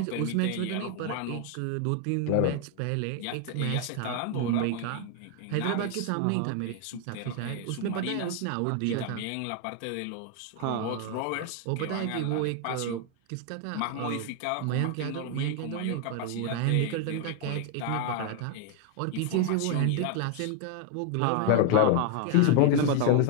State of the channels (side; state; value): both; different; correlation 0.00